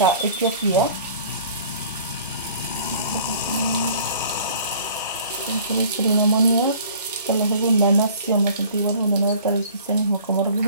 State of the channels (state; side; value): inverted; both; correlation -0.50